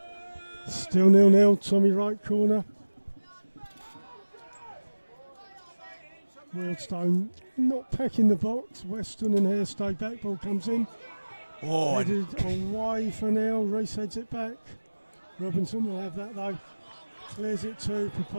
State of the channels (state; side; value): inverted; both; correlation -1.00